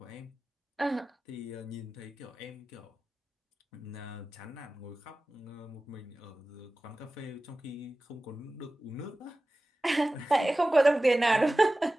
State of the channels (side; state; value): both; normal; correlation 0.96